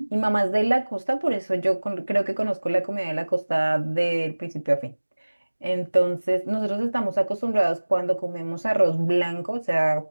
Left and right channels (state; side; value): inverted; both; correlation -1.00